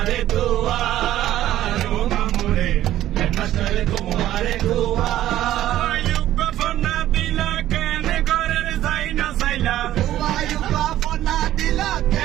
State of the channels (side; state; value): left; quieter; 13.3 dB